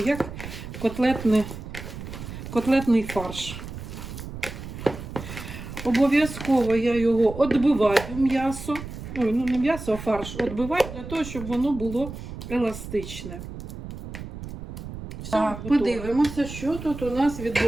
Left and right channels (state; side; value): noise; right; rumble, 10 dB below the sound